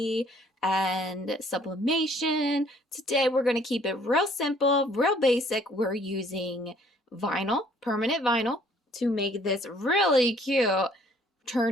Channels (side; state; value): both; normal; correlation 0.60